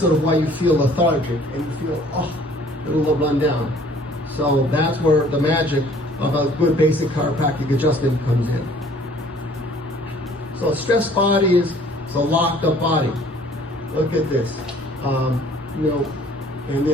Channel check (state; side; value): normal; both; correlation 0.55